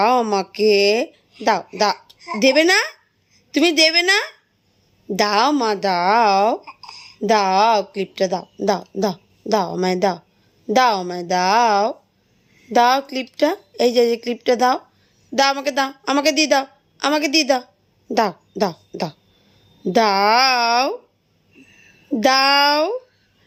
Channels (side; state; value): both; identical; correlation 1.00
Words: আমাকে, দাও দাও। দেবে না? তুমি দেবে না? দাও মা, দাও দাও, ক্লিপটা দাও, দাও দাও, দাও আমায় দাও, দাও আমায় দাও, দাও ক্লিপটা। এই যে ক্লিপটা দাও, দাও আমাকে, দাও আমাকে দিয়ে দাও, আমাকে দিয়ে দাও, দাও দাও দাও, দাও দাও।